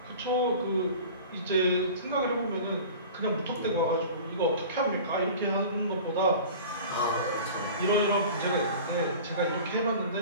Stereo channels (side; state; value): both; inverted; correlation -0.39